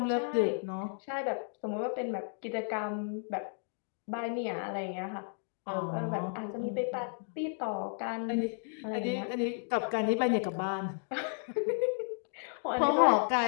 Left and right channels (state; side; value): silent; right; 56 dB below the other